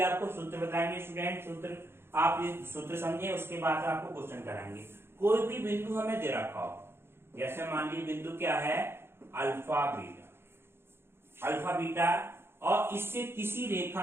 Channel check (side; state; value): left; late; 0.11 ms